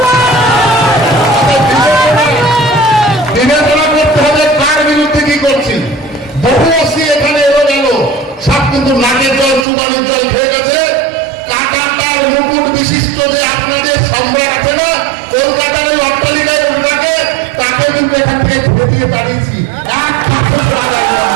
বিবেচনা করতে হবে কার বিরুদ্ধে কি করছি। বহু অসি এখানে এলো গেল, সব কিন্তু নাকের জল চুবালির জল খেয়ে গেছে। কাঁটাতার মুকুট বিশিষ্ট যে আপনাদের সম্রাট আছে না, কলকাতার ওই অট্টালিকায় উঠে তাকে কিন্তু এখান থেকে ছেড়ে দিয়ে দাঁড়িয়েছি। এক কাছে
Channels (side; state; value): left; drops out; at 9.7 s